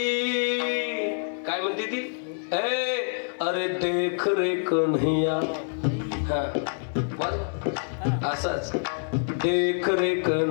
काय म्हणते ती? अरे देख रे कन्हैया. हा असंच, देख रे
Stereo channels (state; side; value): silent; right; 61 dB below the other